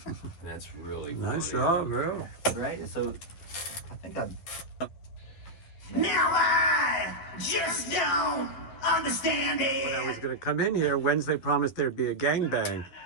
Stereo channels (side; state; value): right; late; 11 ms